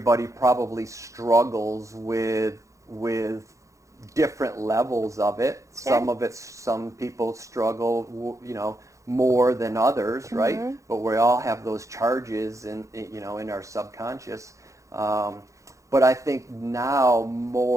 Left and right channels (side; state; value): left; late; 0.15 ms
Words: probably struggles with different levels of it. Sure. Some people struggle, more than others, right? But we all have those charges in our subconscious. But I think now